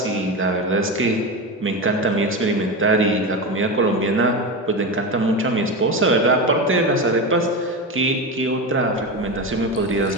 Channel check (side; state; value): both; normal; correlation 0.20